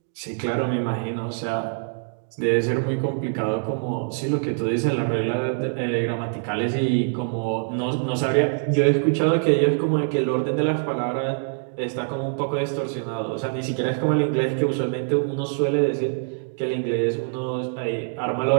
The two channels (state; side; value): silent; left; digital silence